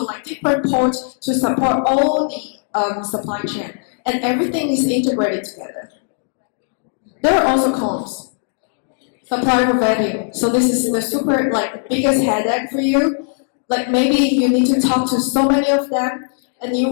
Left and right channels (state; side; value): silent; right; 67 dB below the other